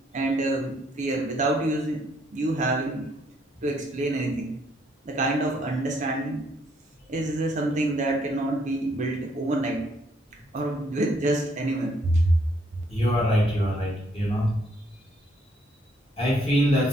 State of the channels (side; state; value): both; normal; correlation 0.69